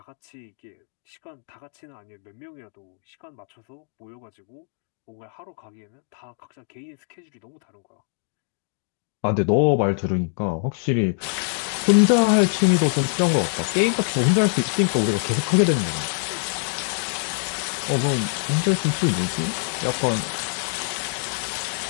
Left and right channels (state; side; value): silent; right; digital silence